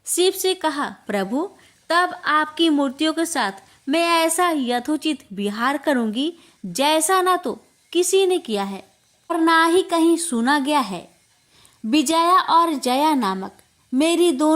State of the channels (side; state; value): both; identical; correlation 1.00